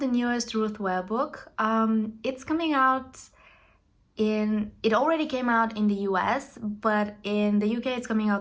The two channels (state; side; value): identical; both; correlation 1.00